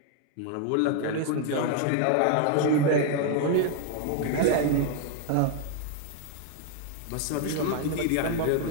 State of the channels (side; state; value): both; different; correlation 0.00